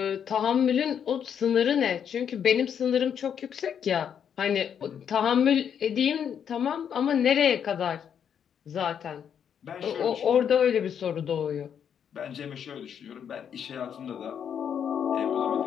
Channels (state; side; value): quieter; right; 8.2 dB